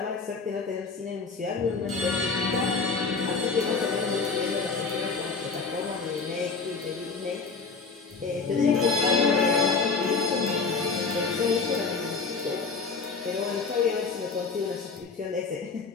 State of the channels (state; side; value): quieter; right; 4.6 dB